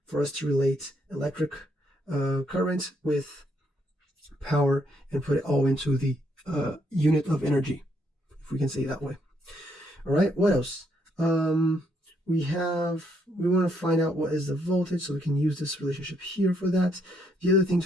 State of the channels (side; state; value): both; normal; correlation 0.73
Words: for us to relate electric current with power and put it all into the unit of energy, if we can say it that way. All right, what else? We want to find out what is the voltage, so we can use this relationship here for that. The other thing